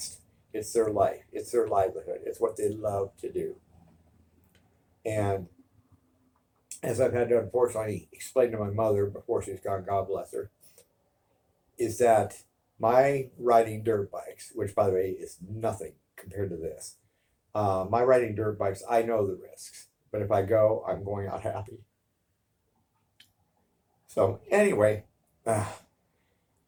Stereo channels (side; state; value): both; identical; correlation 1.00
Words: It's their life. It's their livelihood. It's what they love to do. And as I've had to unfortunately explain to my mother before she's gone, God bless her, is that my riding dirt bikes, which by the way is nothing compared to this, my riding dirt bikes, I know the risks. But if I go, I'm going out happy. So anyway,